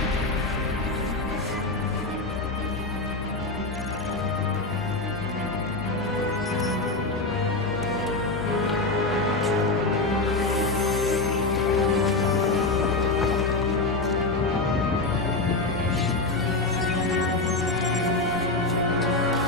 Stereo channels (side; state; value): right; quieter; 3.2 dB